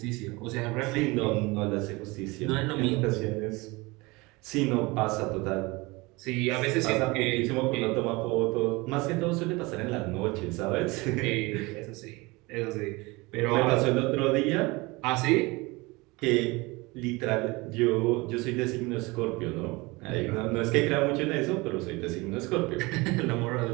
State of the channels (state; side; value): quieter; left; 24.1 dB